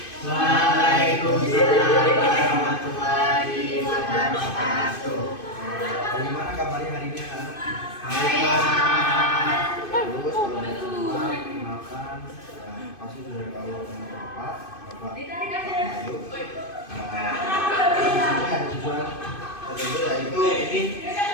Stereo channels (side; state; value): right; late; 2.5 ms